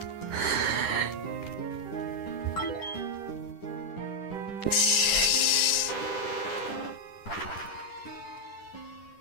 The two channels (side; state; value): right; late; 10 ms